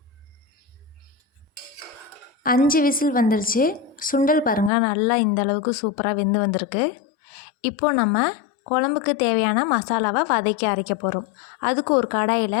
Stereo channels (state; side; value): drops out; right; at 4.7 s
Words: 5 விசில் வந்துருச்சு. சுண்டல் பாருங்கள் நல்லா இந்த அளவுக்கு சூப்பராக வெந்து வந்திருக்கு. இப்போது நம்ம குழம்புக்கு தேவையான மசாலாவை வதக்கி அரைக்க போகிறோம். அதுக்கு ஒரு